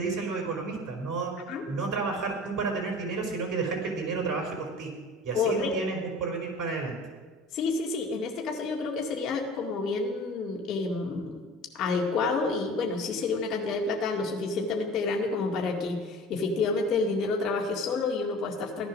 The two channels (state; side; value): normal; both; correlation 0.42